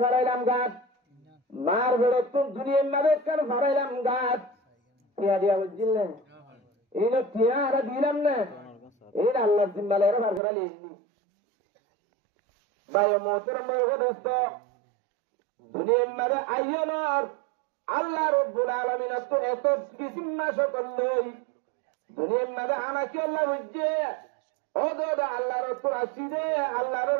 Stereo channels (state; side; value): drops out; left; at 10.4 s